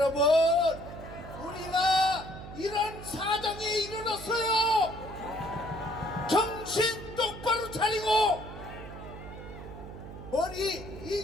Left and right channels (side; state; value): right; noise; hum, 13 dB below the sound